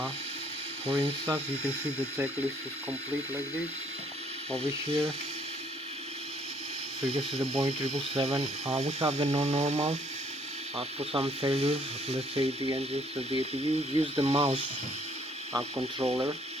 For instance, you can see the checklist is complete like this over here. So you can see the Boeing 777. We have the non-normal. For some failures, let's say the engines of the APU, use the mouse controller.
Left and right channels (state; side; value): normal; both; correlation 0.64